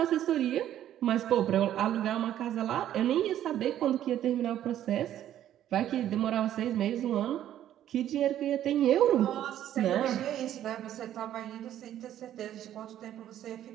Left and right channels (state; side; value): quieter; left; 11.6 dB